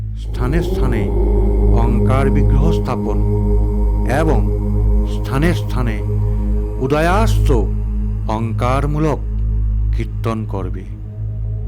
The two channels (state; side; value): identical; both; correlation 1.00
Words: স্থানে স্থানে ওঙ্কার বিগ্রহ স্থাপন এবং স্থানে স্থানে উদয়াস্ত ওঙ্কারমূলক কীর্তন করবে।